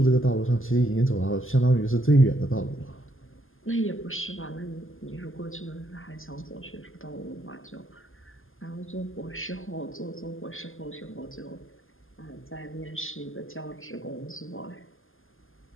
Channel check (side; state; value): right; late; 0.59 ms